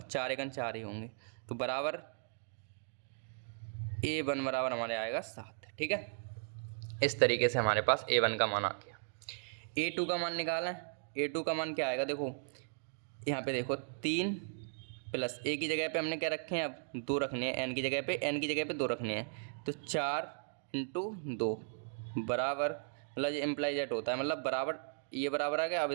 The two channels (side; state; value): left; silent; digital silence